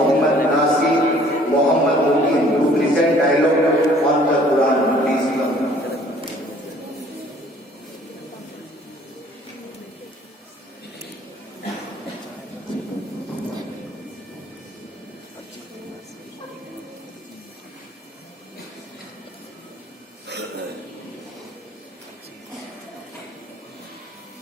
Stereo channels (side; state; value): both; normal; correlation 0.56